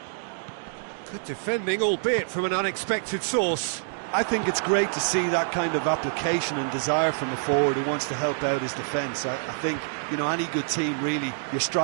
Good defending, albeit from an unexpected source. I think it's great to see that kind of application and desire from a forward who wants to help out his defence. I think, you know, any good team, really, your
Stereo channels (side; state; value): left; silent; digital silence